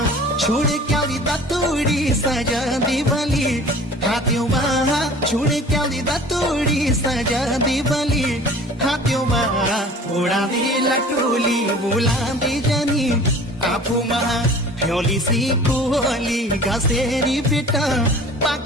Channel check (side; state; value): both; normal; correlation 0.45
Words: छोड क्याउली दतुडी सजाउँदी बली हात्योमा छोड क्याउली दतुडी सजाउँदी बली हात्योमा उडाँदी लटुली बुलाउँदी जनी आफूमा झ्याउली सी कुहोली घसेरी बेटा